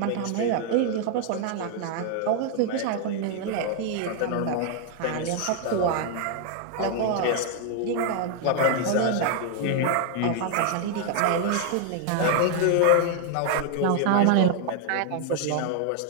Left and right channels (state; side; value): different; both; correlation 0.00